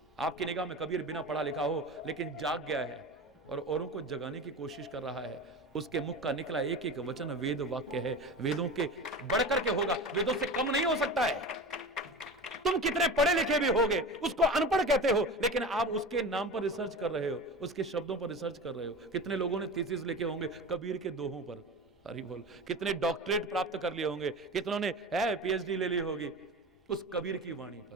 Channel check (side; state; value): both; normal; correlation 0.31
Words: आपकी निगाह में कबीर बिना पढ़ा लिखा हो लेकिन जाग गया है और औरों को जगाने की कोशिश कर रहा है। उसके मुख का निकला एक एक वचन वेद वाक्य है। वेदों के बढ़कर के होगा, वेदों से कम नहीं हो सकता है। तुम कितने पढ़े लिखे भी होगे, उसको अनपढ़ कहते हो, लेकिन आप उसके नाम पर रिसर्च कर रहे हो, उसके शब्दों पर रिसर्च कर रहे हो। कितने लोगों ने थीसिस लिखे होंगे कबीर के दोहों पर। हरि बोल। कितने डॉक्टरेट प्राप्त कर लिए होंगे, कितनों ने पीएचडी ले ली होगी उस कबीर की वाणी